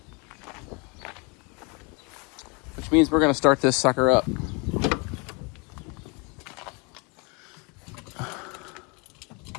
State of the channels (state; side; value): quieter; right; 30.8 dB